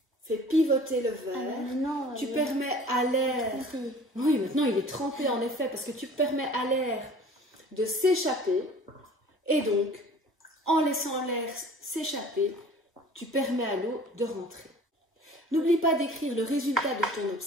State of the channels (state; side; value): normal; both; correlation 0.46